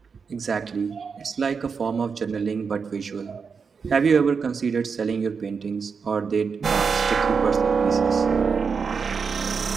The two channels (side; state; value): left; quieter; 5.6 dB